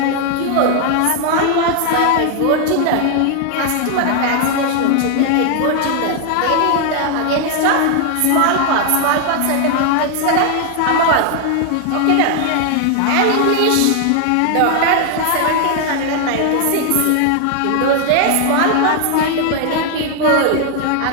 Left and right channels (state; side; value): different; both; correlation 0.00